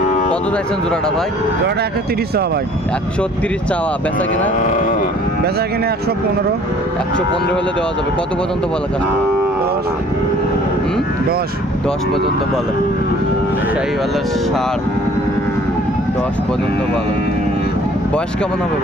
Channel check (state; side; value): normal; both; correlation 0.54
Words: কত চাইছেন জোড়াটা ভাই? জোড়াটা 130 চাওয়া ভাই। 130 চাওয়া, বেচা কিনা? বেচা কিনে 115। 115 হলে দেওয়া যাবে। কত পর্যন্ত বলে কাস্টমার? 10 10 পর্যন্ত বলে। শাহিওয়ালের ষাঁড় 10 পর্যন্ত বলে। বয়স কেমন হবে